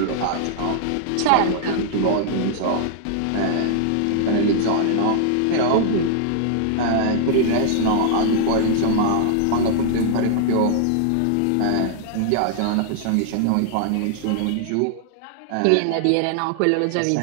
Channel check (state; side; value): different; both; correlation -0.01